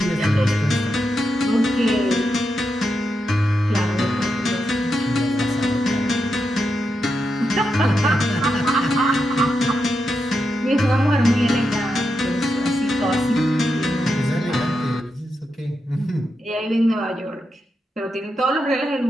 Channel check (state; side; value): normal; both; correlation 0.86